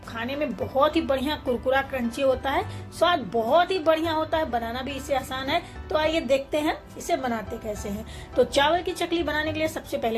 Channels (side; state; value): both; identical; correlation 1.00